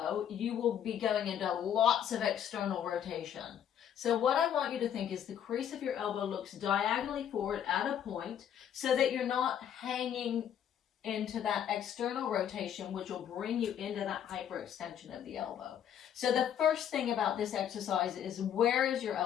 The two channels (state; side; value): quieter; right; 9.4 dB